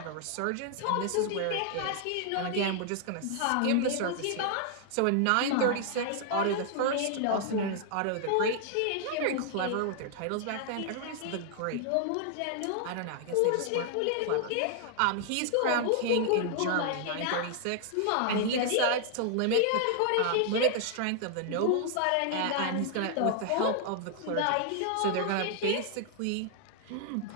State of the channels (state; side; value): different; both; correlation 0.00